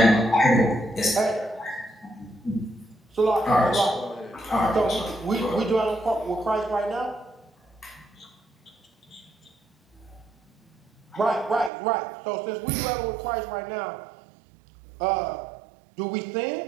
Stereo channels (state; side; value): drops out; left; at 11.7 s